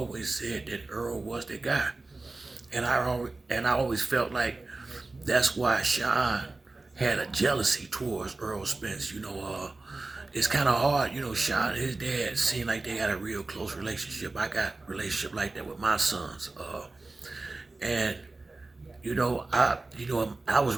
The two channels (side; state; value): left; quieter; 3.3 dB